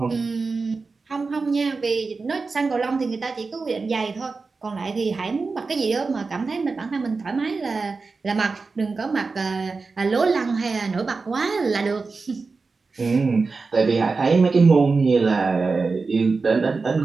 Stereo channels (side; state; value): left; quieter; 4.2 dB